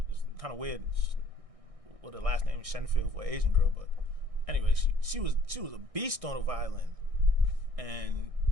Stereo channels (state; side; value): late; left; 1.6 ms